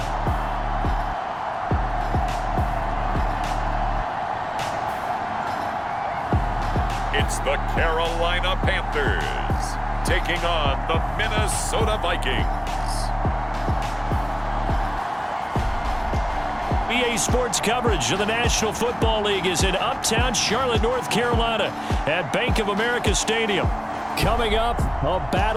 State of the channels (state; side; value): identical; both; correlation 1.00